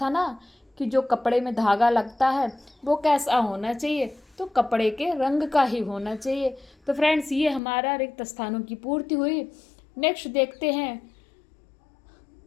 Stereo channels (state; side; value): drops out; right; at 7.6 s